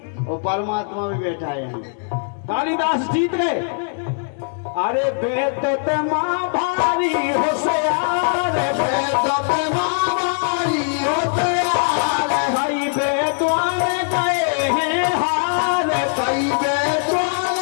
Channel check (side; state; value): right; silent; digital silence